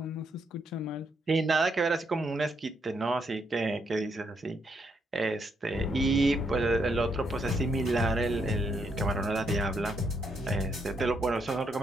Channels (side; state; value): both; normal; correlation 0.76